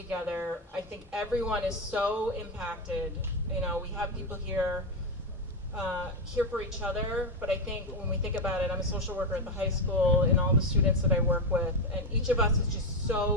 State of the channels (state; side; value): normal; both; correlation 0.09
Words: I think everyone is so impacted. We have people here for each other, but I think when we think about it, I'm a social worker at the high school and all the students that I work with, and each of us is just